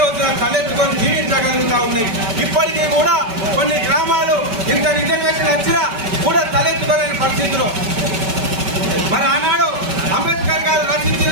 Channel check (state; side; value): late; left; 5.2 ms